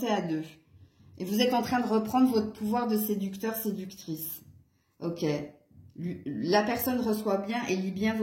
à deux. Et vous êtes en train de reprendre votre pouvoir de séducteur, séductrice. Ok. La personne reçoit bien et lit bien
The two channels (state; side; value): identical; both; correlation 1.00